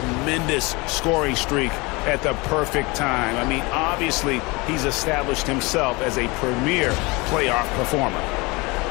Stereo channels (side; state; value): right; quieter; 25.1 dB